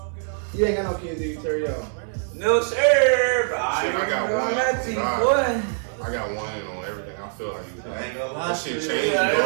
You ain't got no kids, do you, Terrio? No sir, but Shit, I got one. Nothing, Nah. boy. I got one on everything. I feel like you. I ain't gonna lie. That shit shit. changed, Yeah,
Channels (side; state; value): left; silent; digital silence